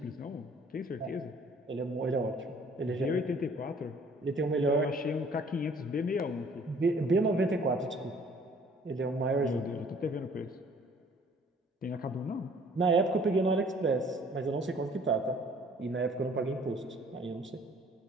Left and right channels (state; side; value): normal; both; correlation 0.56